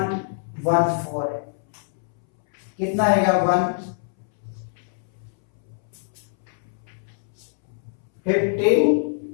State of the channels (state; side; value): silent; right; 62 dB below the other